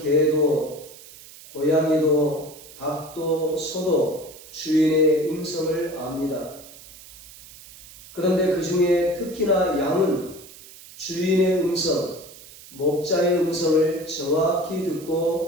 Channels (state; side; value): noise; right; hiss, 19 dB below the sound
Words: 고양이도, 닭도, 소도 주인의 음성을 압니다. 그런데 그 중에 특히나 양은 주인의 음성, 목자의 음성을 정확히